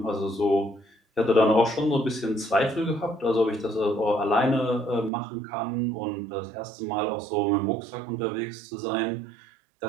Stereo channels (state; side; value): drops out; left; at 5.1 s